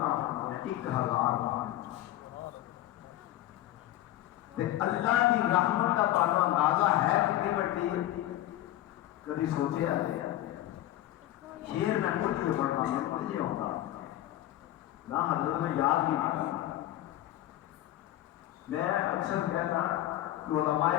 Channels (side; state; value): right; quieter; 14.4 dB